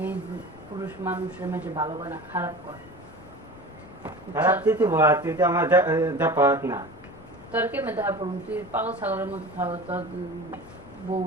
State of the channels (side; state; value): both; normal; correlation 0.35